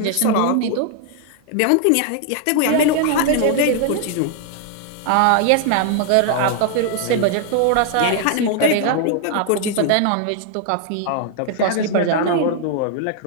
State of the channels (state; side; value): different; both; correlation 0.00